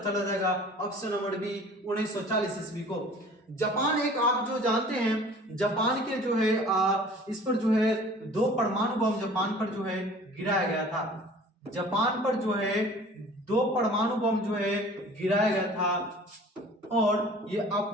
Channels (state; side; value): normal; both; correlation 0.47